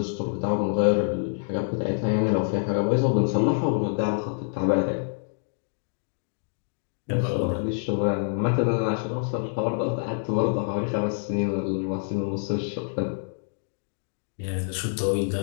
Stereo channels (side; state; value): right; silent; digital silence